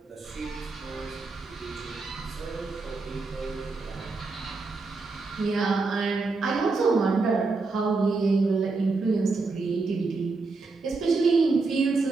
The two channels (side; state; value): left; quieter; 3.9 dB